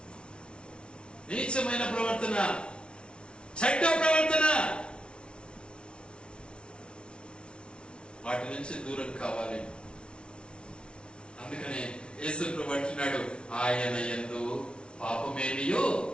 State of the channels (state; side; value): late; right; 0.057 ms